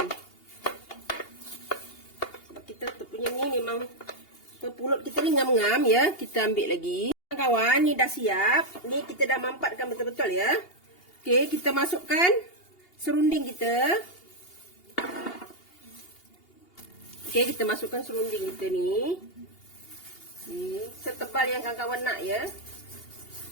Sebab kita punya ni memang pulut kita ni ngam-ngam ya. Kita ambil lagi. Kawan, ni dah siap. Ni kita dah mampatkan betul-betul ya. Okey, kita masukkan serunding kita. Okey, kita masukkan serunding kita ni. Setebal yang kawan-kawan nak ya.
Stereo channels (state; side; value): late; right; 2.8 ms